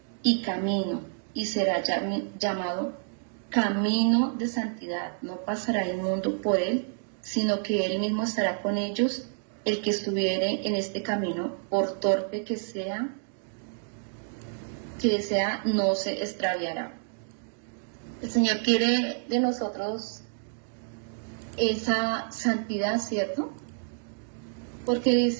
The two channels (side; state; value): left; silent; digital silence